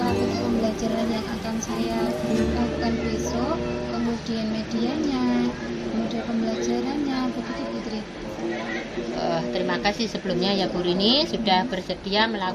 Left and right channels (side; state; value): both; identical; correlation 1.00